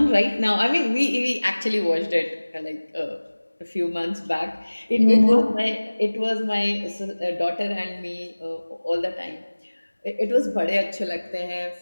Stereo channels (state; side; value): inverted; both; correlation -1.00